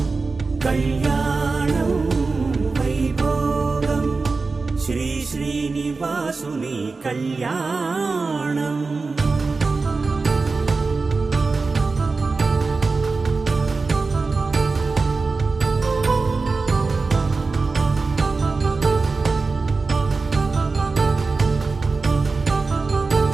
కళ్యాణం వైభోగం శ్రీ శ్రీనివాసుని కళ్యాణం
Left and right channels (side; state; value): left; quieter; 4.1 dB